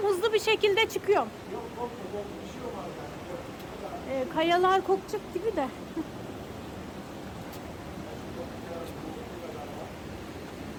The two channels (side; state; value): both; identical; correlation 1.00